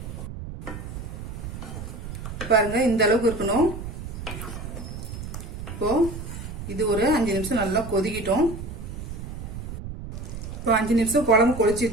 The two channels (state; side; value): noise; right; rumble, 8 dB below the sound